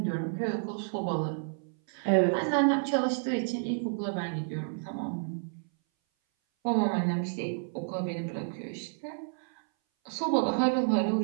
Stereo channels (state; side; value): silent; left; 58 dB below the other